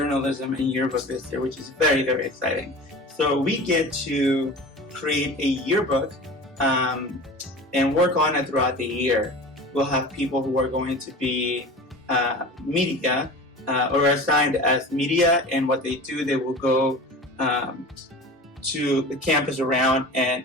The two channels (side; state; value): both; normal; correlation 0.36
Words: and yearbook this year, which is very, very exciting. So we get to create a yearbook and work on it throughout the year. We'll have people who are going to be media or assigned as media, and what they do, they will go to the campus around and